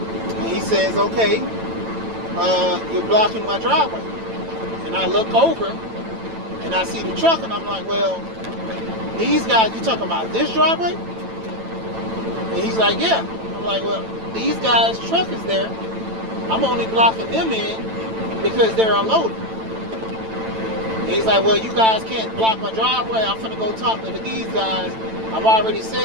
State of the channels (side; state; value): left; late; 9.0 ms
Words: he says, okay, you're blocking my driveway. And I look over and I see the truck, and I'm like, well, these guys, you talking about this driveway? And he's like, yeah. I'm like, well, these guys' truck is there. I'm only blocking them in because they're unloaded. And he's like, well, you guys can't block my driveway. I'm finna go talk to these guys. I've already